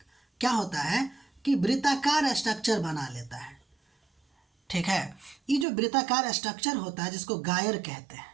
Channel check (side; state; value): left; drops out; at 5.7 s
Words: क्या होता है कि वृत्ताकार स्ट्रक्चर बना लेता है, ठीक है। ये जो वृत्ताकार स्ट्रक्चर होता है जिसको गायर कहते हैं,